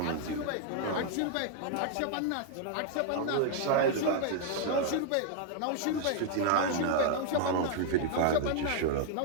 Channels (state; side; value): different; both; correlation 0.00